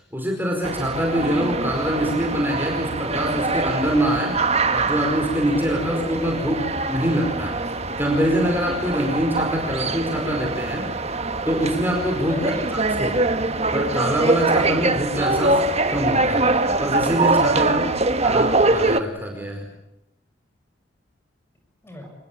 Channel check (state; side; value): normal; both; correlation 0.31